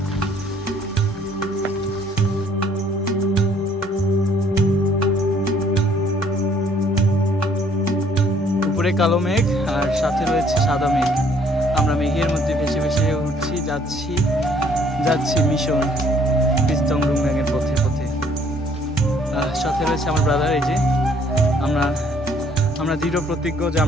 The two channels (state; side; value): normal; both; correlation 0.62